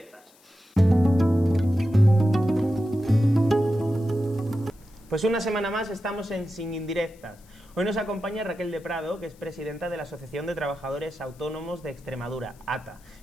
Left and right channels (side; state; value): left; noise; hiss, 29 dB below the sound